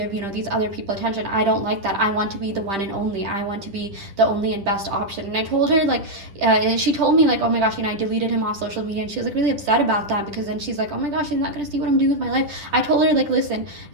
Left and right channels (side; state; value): left; late; 10 ms